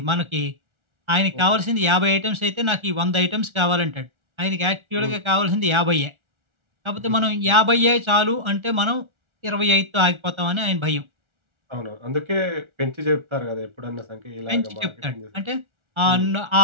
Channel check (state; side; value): late; left; 1.4 ms